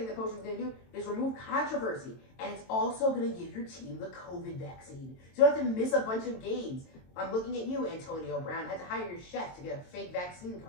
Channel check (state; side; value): late; right; 22 ms